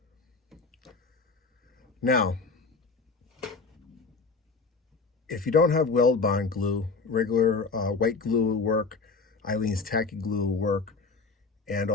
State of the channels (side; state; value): right; quieter; 4.3 dB